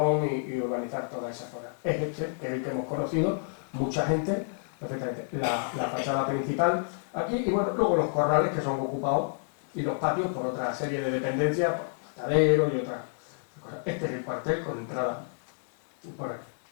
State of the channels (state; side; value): silent; right; digital silence